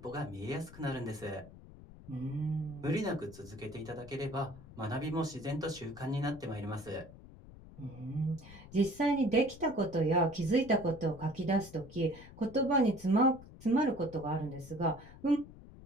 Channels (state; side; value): noise; left; rumble, 18 dB below the sound